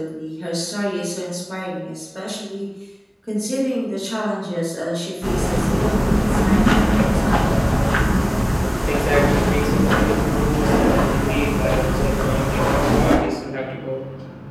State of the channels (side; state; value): both; identical; correlation 1.00